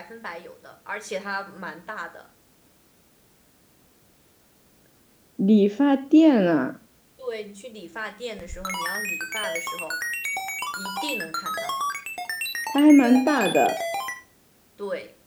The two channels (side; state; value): both; identical; correlation 1.00